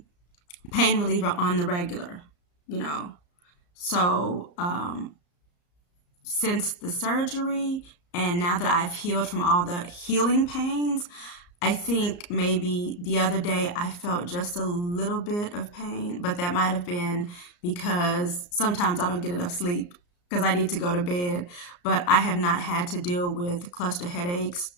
reliever on the regular, you know. So since the surgery and now that I've healed from all the healing pains, I think maybe the other day I felt just a little bit of pain, but that might have been because sometimes I don't get enough sleep because I need to go to bed. But I have not had to deal with cluster headaches,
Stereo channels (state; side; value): late; right; 34 ms